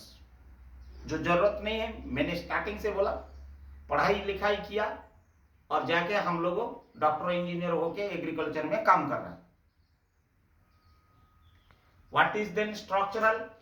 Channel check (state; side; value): identical; both; correlation 1.00